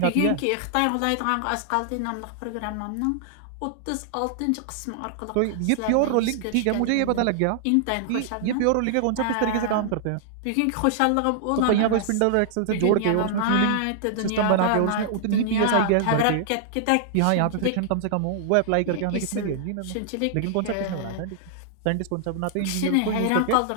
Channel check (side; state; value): both; different; correlation -0.01